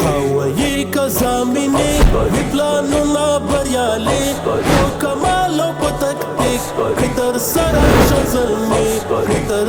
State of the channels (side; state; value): both; identical; correlation 1.00